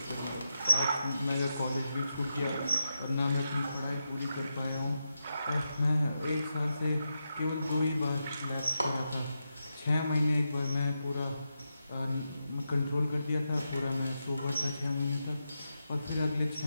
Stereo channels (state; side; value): inverted; both; correlation -0.87